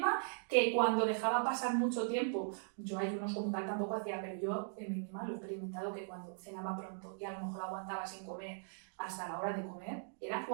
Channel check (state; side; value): silent; left; digital silence